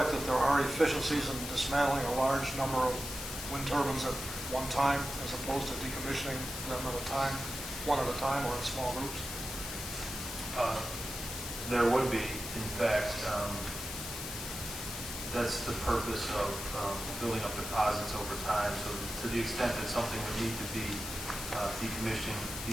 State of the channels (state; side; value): noise; left; hiss, 7 dB below the sound